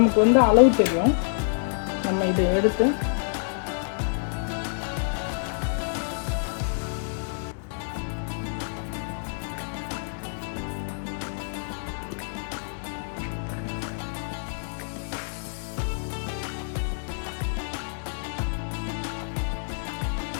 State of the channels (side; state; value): right; silent; digital silence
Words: வந்து அளவு தெரியும். நம்ம இதை எடுத்து